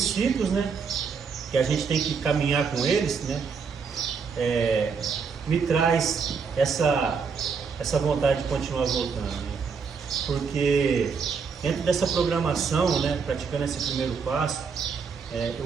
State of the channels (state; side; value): quieter; left; 5.7 dB